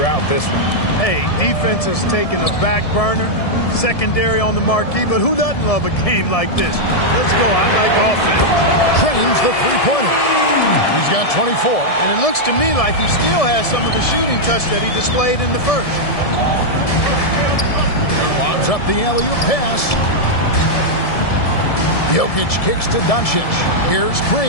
this one. Hey, defense has taken a back burner, secondary on the marquee, but who doesn't love a game like this? Let's go. I like offense. Trains the three-pointer. He's got 24. And it looks to me like he still has some of the shooting touch that he displayed in the first. Lobs up the alley-oop pass. Jokic kicks to Doncic. Here's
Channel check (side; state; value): right; late; 1.7 ms